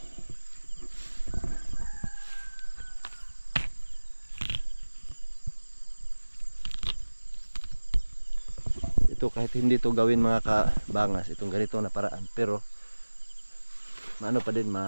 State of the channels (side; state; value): both; inverted; correlation -1.00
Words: Ito kahit hindi to gawin mga kabangas, itong ganito na paraan, pero maano pa din,